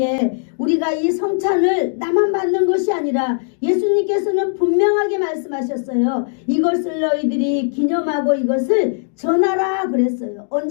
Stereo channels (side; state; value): right; silent; digital silence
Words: 우리가 이 성찬을 나만 받는 것이 아니라 예수님께서는 분명하게 말씀하셨어요. 이것을 너희들이 기념하고 이것을 전하라 그랬어요.